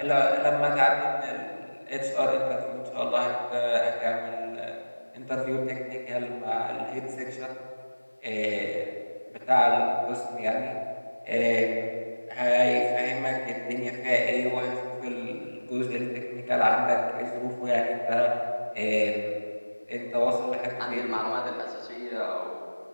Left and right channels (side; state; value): both; inverted; correlation -1.00